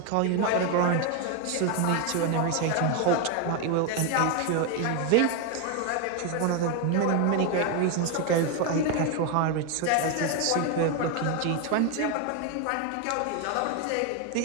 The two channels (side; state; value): both; different; correlation 0.01